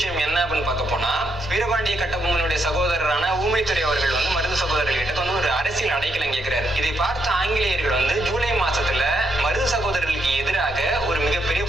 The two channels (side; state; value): both; normal; correlation 0.78